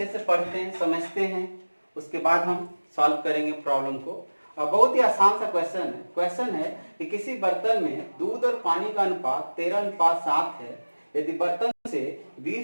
से पढ़ते हैं, समझते हैं, उसके बाद हम सॉल्व करेंगे प्रॉब्लम को। और बहुत ही आसान सा क्वेश्चन है कि किसी बर्तन में दूध और पानी का अनुपात 13:7 है। यदि बर्तन से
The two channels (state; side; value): inverted; both; correlation -1.00